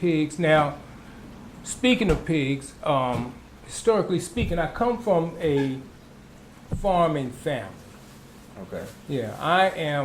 Now, speaking of pigs, historically speaking, I come from a farming family. Okay. Yeah, I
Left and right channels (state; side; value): identical; both; correlation 1.00